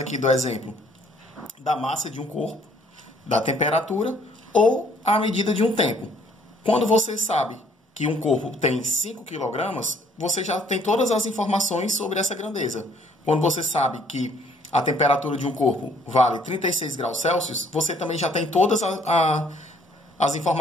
aqui do exemplo da massa de um corpo, da temperatura ou a medida de um tempo. Quando você sabe que um corpo tem 5 kg, você já tem todas as informações sobre essa grandeza. Quando você sabe que a temperatura de um corpo vale 36 graus Celsius, você também já tem todas as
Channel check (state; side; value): normal; both; correlation 0.62